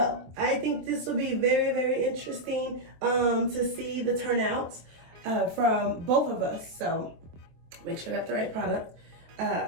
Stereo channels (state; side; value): late; left; 24 ms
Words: I think this will be very, very interesting to see the turnouts from both of us. So make sure I got the right product.